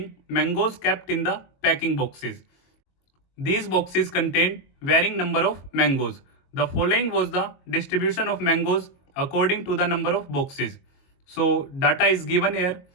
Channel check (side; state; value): right; late; 22 ms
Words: mangoes kept in the packing boxes. These boxes contained varying number of mangoes. The following was the distribution of mangoes according to the number of boxes. So data is given here.